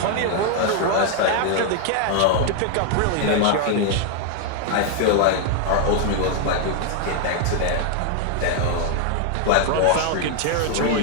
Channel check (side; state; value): both; different; correlation 0.00